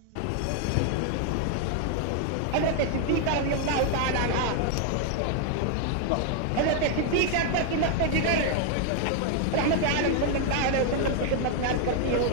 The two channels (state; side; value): different; both; correlation 0.00